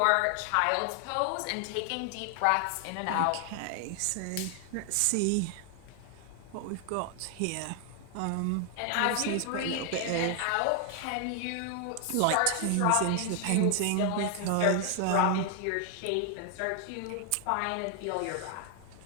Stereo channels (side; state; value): both; different; correlation 0.00